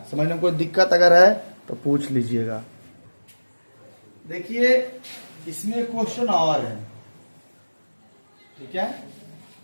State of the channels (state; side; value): inverted; both; correlation -1.00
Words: समझने में कोई दिक्कत अगर है तो पूछ लीजिएगा। देखिए इसमें क्वेश्चन और है, ठीक है।